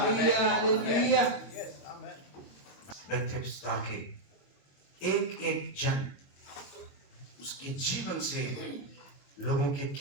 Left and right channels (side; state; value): right; late; 22 ms